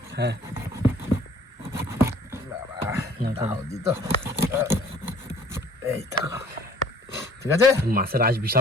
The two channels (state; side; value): normal; both; correlation 0.54